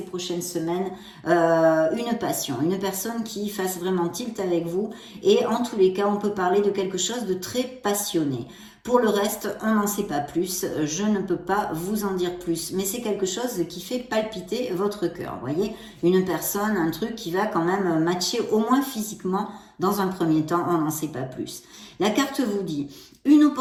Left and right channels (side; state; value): both; identical; correlation 1.00